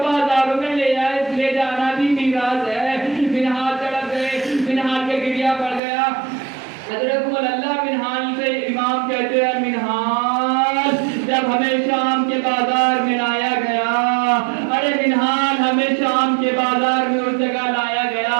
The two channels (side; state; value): left; drops out; at 5.8 s